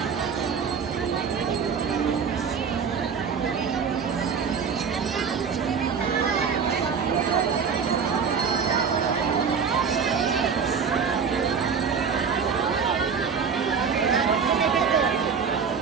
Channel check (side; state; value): left; quieter; 6.2 dB